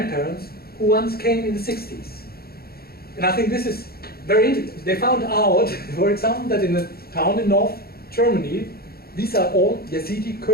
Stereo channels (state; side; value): late; right; 0.45 ms